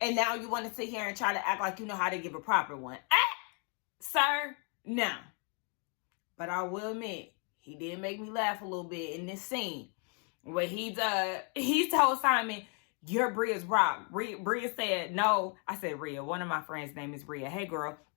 and now you want to sit here and try to act like you know how to give a proper one. Sir, no. But I will admit, he did make me laugh a little bit in this scene where he told Simon, you're Bria's rock. Bria said, no. I said, Bria. One of my friends' name is Bria. Hey, girl.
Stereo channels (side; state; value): right; quieter; 38.3 dB